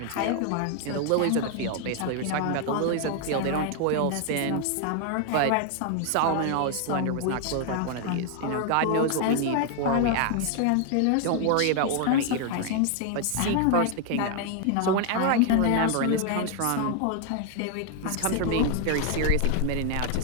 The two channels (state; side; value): different; both; correlation 0.00